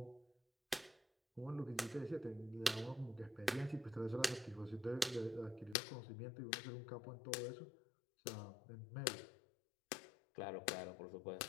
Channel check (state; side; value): drops out; right; at 5.8 s